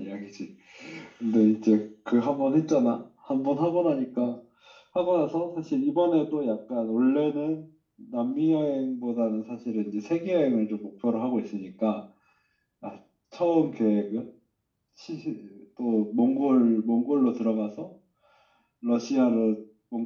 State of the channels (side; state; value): both; identical; correlation 1.00